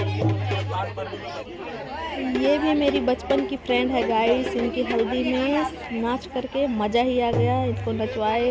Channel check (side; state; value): both; identical; correlation 1.00